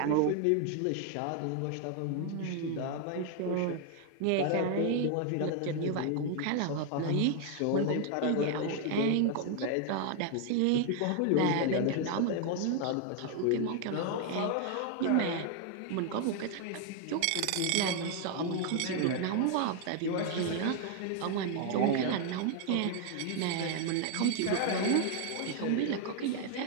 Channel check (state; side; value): different; both; correlation 0.00